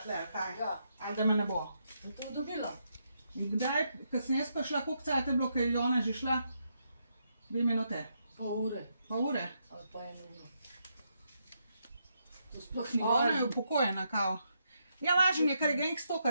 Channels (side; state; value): both; inverted; correlation -0.80